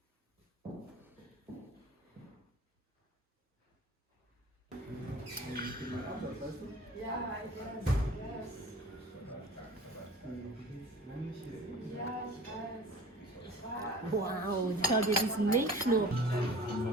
Wow, schau dir diesen Milchschnur.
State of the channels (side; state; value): both; normal; correlation 0.43